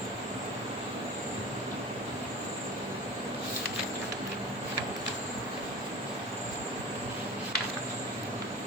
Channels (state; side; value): normal; both; correlation 0.35